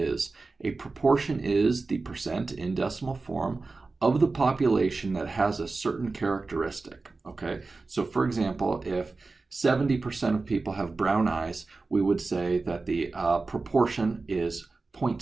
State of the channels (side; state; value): left; quieter; 3.8 dB